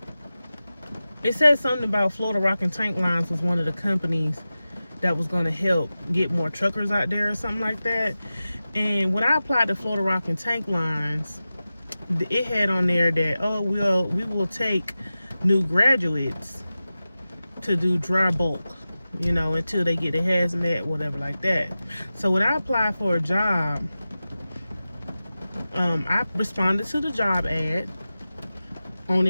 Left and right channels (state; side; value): inverted; both; correlation -0.95